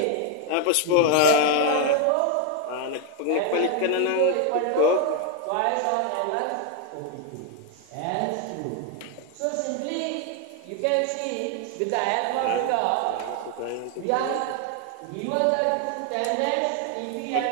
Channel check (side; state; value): both; different; correlation 0.01